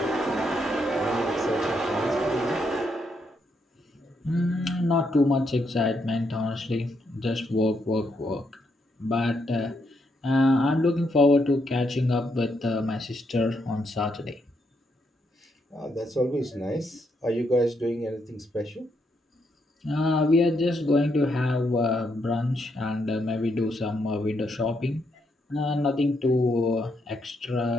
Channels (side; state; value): both; normal; correlation 0.78